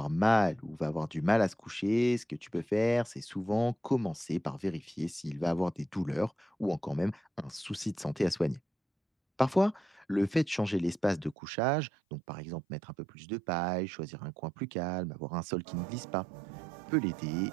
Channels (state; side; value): drops out; left; at 11.4 s